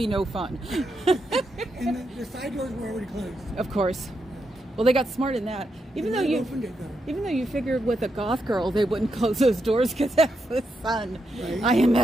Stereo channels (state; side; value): normal; both; correlation 0.83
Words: no fun. And the side doors were already closed. Of course. Well, they got smart in that. Even though you figured with a goth girl they wouldn't close those doors because that's the sun. Right. I am